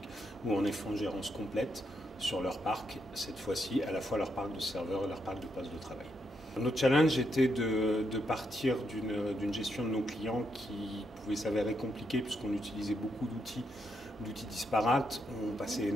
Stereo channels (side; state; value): both; normal; correlation 0.79